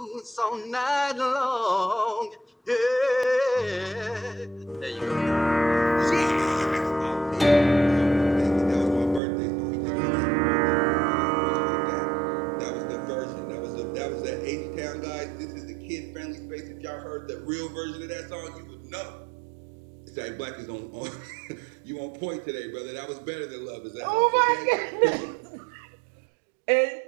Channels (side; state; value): left; drops out; at 9.2 s